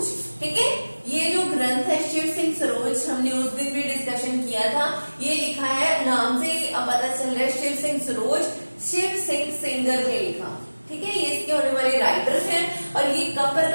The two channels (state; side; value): inverted; both; correlation -1.00